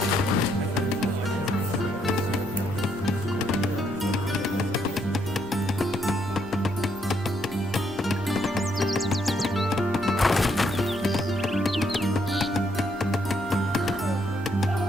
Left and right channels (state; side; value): normal; both; correlation 0.73